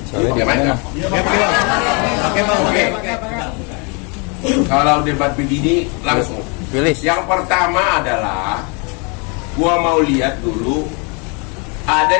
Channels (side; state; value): right; quieter; 33.3 dB